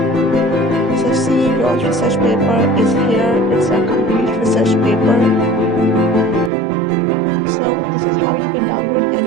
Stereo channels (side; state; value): left; drops out; at 6.5 s